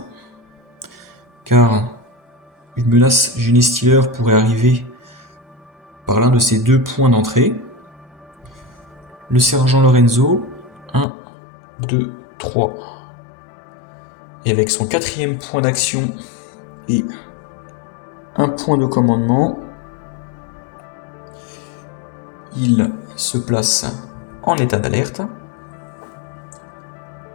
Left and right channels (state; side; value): drops out; right; at 11.1 s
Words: Car une menace génie stealer pourrait arriver par l'un de ces 2 points d'entrée. Le sergent Lorenzo, 1, 2, 3. Et avec son 4e point d'action et 1 point de commandement, il se place en état d'alerte.